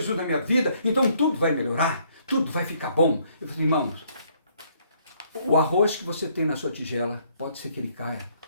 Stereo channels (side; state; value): both; inverted; correlation -0.67